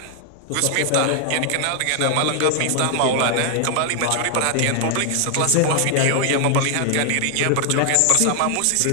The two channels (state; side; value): different; both; correlation 0.00